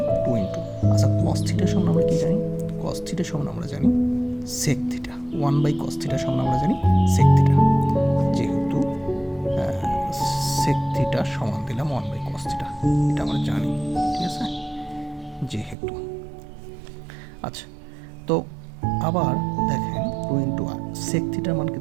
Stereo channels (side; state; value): left; drops out; at 15.8 s